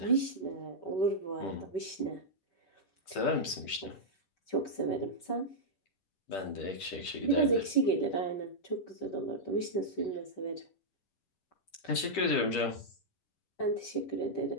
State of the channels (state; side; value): late; right; 10 ms